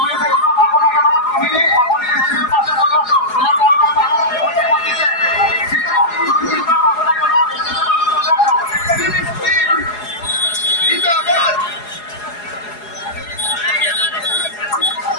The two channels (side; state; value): right; late; 4.8 ms